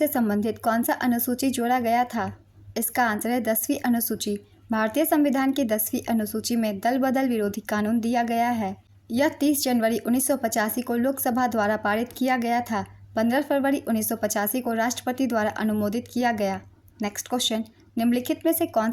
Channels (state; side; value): identical; both; correlation 1.00